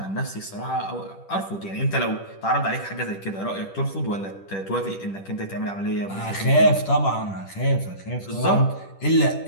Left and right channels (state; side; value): late; right; 10 ms